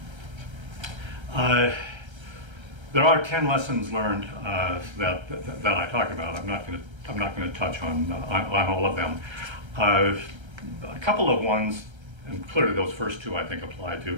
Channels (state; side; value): late; left; 1.3 ms